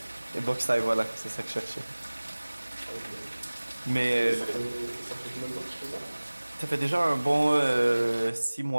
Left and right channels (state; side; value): inverted; both; correlation -1.00